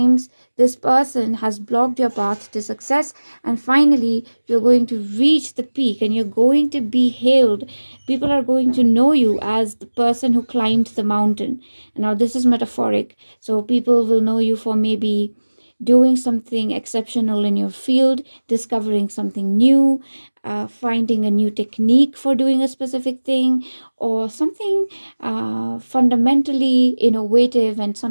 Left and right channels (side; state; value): both; inverted; correlation -1.00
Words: this person has blocked your path to success, and finally you're going to reach the peak and you're going to be hailed. People are going to know you as the person who climbed the mountain. Now this is metaphoric, so people will know you for maybe doing something exceptional in your field, discovering something new, finding a new technique for doing a specific thing, or something fundamentally innovative, and